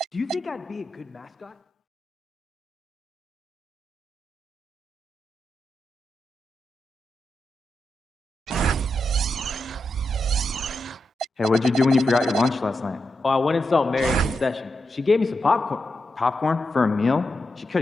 Do you think I'd be a good mascot? Hey, what'd you do when you forgot your lunch last night? Oh, I went and saw Mary in concession. She gave me some popcorn. Popcorn? For a meal? She could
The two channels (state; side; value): normal; both; correlation 0.87